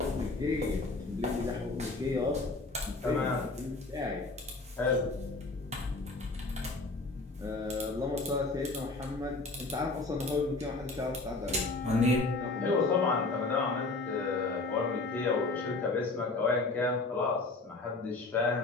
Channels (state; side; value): quieter; right; 3.4 dB